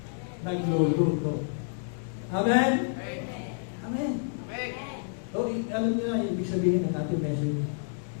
Nagluluto. Amen? Amen. So, alam niyo na, ibig sabihin ng ating message.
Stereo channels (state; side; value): silent; right; digital silence